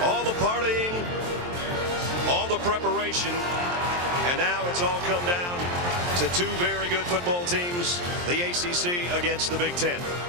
All the partying, all the preparation, and now it's all come down to two very good football teams, the ACC against the Big Ten.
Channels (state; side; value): late; left; 23 ms